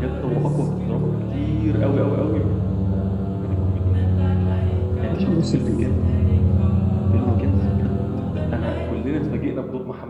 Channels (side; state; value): both; identical; correlation 1.00